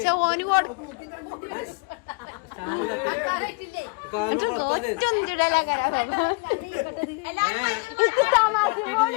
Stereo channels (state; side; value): quieter; right; 31.0 dB